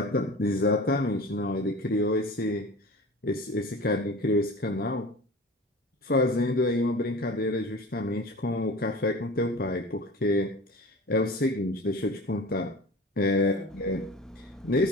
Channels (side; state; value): both; normal; correlation 0.36